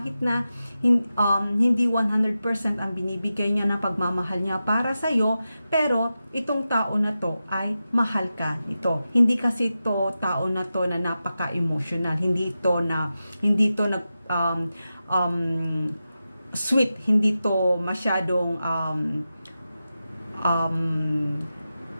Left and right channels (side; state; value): both; inverted; correlation -0.91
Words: na hindi 100% ang binibigay niya na pagmamahal niya para sa'yo, pero itong tao na to ay mahal ka ito. Hindi kasi ito tao na to na napaka-emotional. Hindi to sweet. Hindi to masyadong